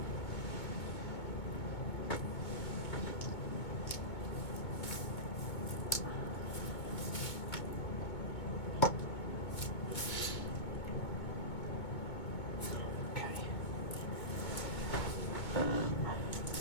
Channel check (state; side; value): late; right; 2.2 ms